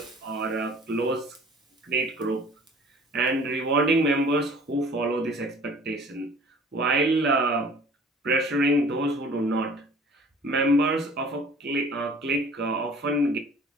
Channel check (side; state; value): both; normal; correlation 0.50